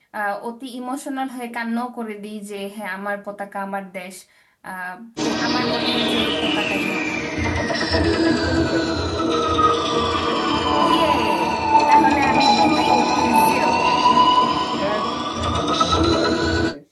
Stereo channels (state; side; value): identical; both; correlation 1.00